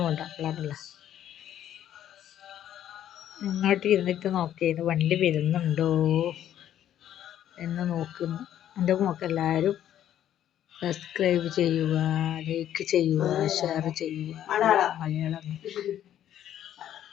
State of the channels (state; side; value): quieter; right; 11.1 dB